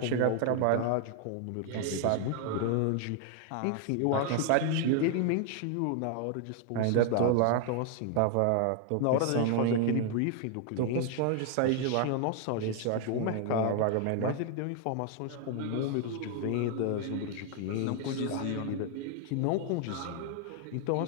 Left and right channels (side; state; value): both; different; correlation 0.00